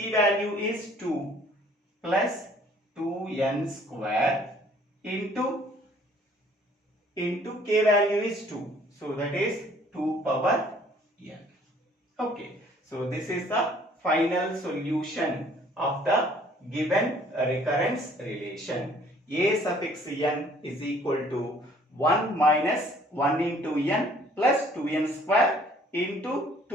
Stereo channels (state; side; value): normal; both; correlation 0.57